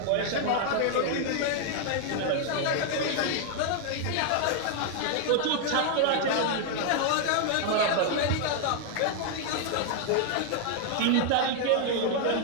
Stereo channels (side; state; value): both; different; correlation 0.00